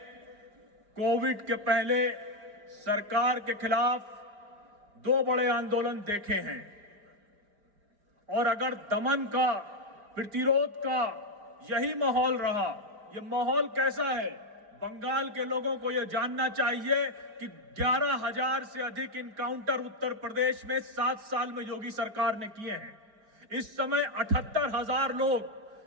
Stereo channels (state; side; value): late; left; 4.9 ms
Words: कोविड के पहले सरकार के खिलाफ 2 बड़े आंदोलन देखे हैं। और अगर दमन का, प्रतिरोध का यही माहौल रहा, यह माहौल कैसा है, बंगाल के लोगों को यह जानना चाहिए कि 11,000 से अधिक इनकाउंटर उत्तर प्रदेश में 7 साल में योगी सरकार ने किए हैं। इस समय 78,000